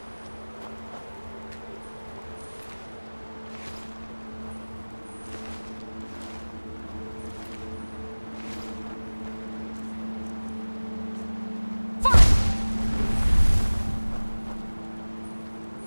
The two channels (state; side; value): inverted; both; correlation -1.00